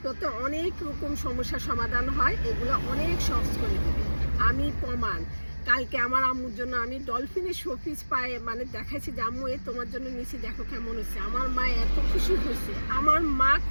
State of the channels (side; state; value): both; inverted; correlation -1.00